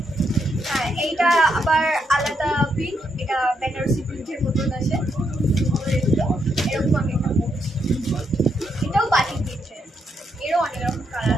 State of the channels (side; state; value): both; normal; correlation 0.78